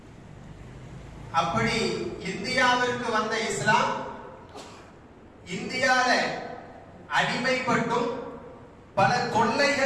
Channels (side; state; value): both; identical; correlation 1.00